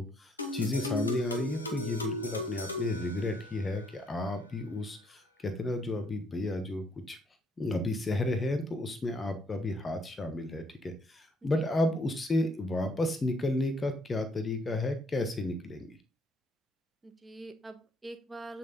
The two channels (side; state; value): both; normal; correlation 0.67